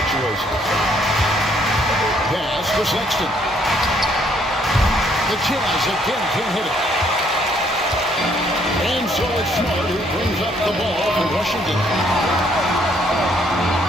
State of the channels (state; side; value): normal; both; correlation 0.67